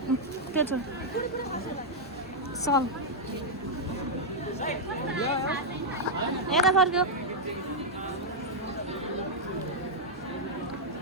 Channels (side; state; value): both; normal; correlation -0.03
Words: त्यो छ सल यता फर्क्यो।